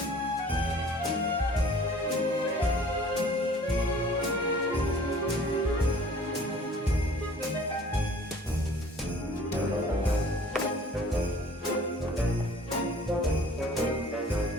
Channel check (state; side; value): normal; both; correlation 0.51